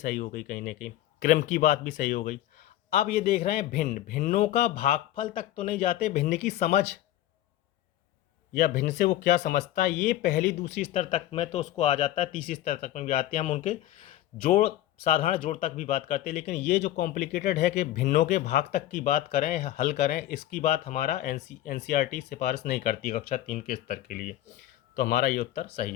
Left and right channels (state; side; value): quieter; right; 13.9 dB